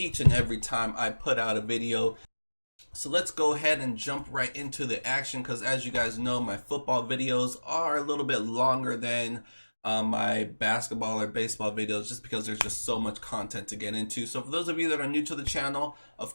and every time I put out a video. So let's go ahead and jump right into the action, because as you guys know, my football videos are a little bit longer than my basketball or baseball videos, just because there's just so much content to get into. So for those of you that are new to the channel, of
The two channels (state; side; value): inverted; both; correlation -1.00